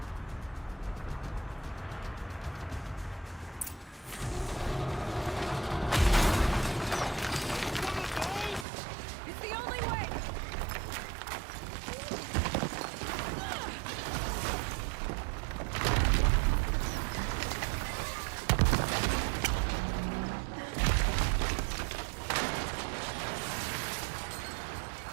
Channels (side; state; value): left; drops out; at 8.7 s